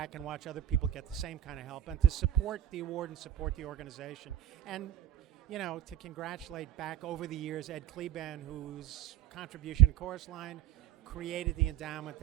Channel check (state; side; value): quieter; left; 11.4 dB